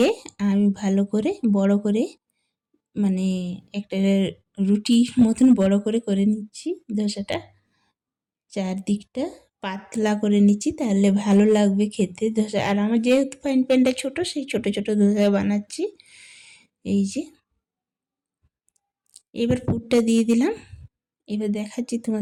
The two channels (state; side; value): identical; both; correlation 1.00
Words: আমি ভালো করে বড় করে মানে একটা রুটির মতন বড় করে করে নিচ্ছি ধোসাটা। চারদিকটা পাতলা করে নিচ্ছি, তাহলে ভালো লাগবে খেতে ধোসা। আর আমার যেহেতু ফ্রাইং প্যানটা ছোটো, সেই ছোটো ছোটো ধোসা বানাচ্ছি। এই যে এবার পুরটা দিয়ে দিলাম। এবার দেখাচ্ছি